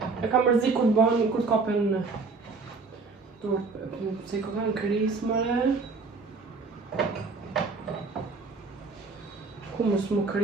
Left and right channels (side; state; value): left; quieter; 4.3 dB